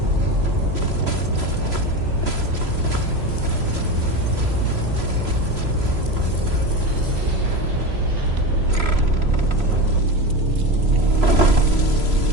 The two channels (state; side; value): late; left; 3.0 ms